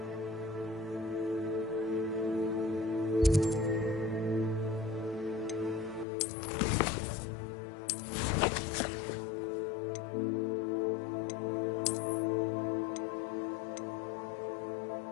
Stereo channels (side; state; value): right; drops out; at 6.1 s